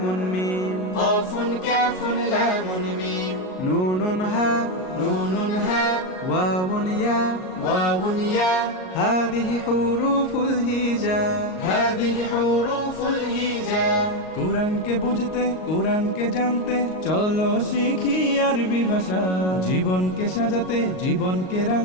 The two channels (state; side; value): late; right; 38 ms